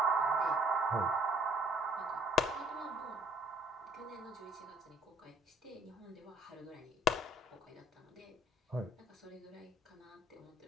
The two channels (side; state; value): both; normal; correlation 0.57